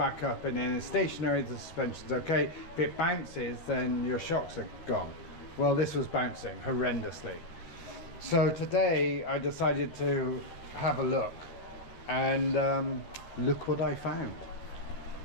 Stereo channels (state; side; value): late; right; 12 ms